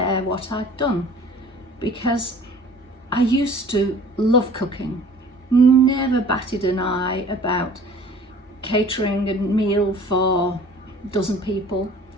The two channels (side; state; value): both; normal; correlation 0.48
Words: what I'd done, because I used to love cooking, never batted an eye about catering a meal for a dozen people.